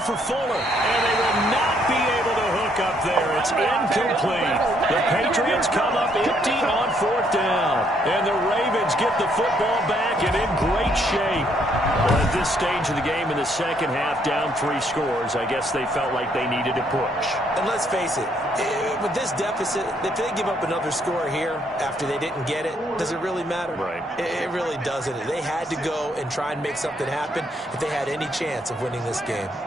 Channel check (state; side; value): normal; both; correlation 0.70